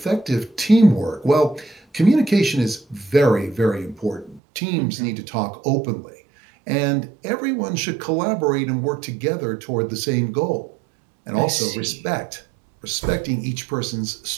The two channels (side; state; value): left; drops out; at 4.4 s